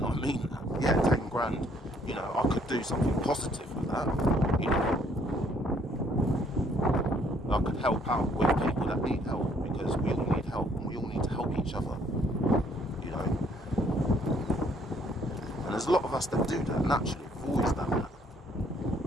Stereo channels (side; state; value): both; normal; correlation 0.64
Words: I mean that. Yeah, 10 grand. You know, I could do something positive with that. You know, I could help out with people that need help, because we all need help and we all need to help each other. You know, and there's a lot of us that do that naturally. We've always done that.